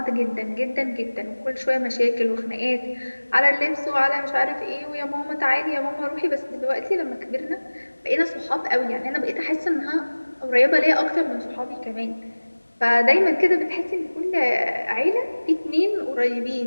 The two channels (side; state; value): both; inverted; correlation -1.00